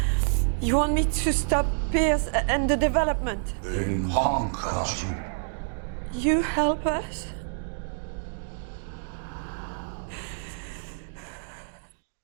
you want me to stop Pierce and the development? In Hankasu. You help us?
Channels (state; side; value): silent; left; digital silence